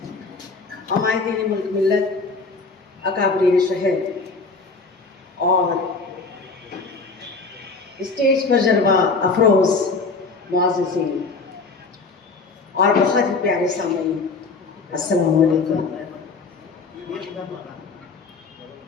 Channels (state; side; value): quieter; right; 4.1 dB